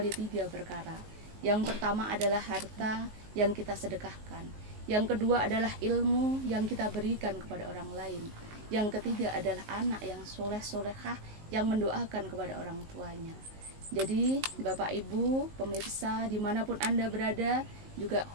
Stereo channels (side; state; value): left; late; 19 ms